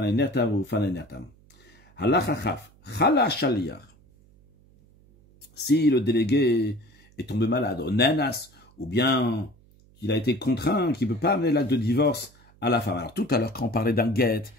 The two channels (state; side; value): noise; right; hum, 29 dB below the sound